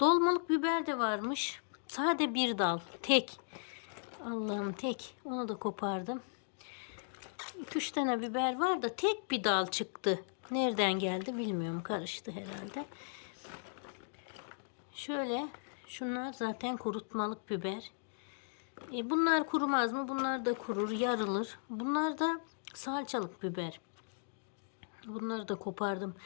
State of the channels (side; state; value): right; silent; digital silence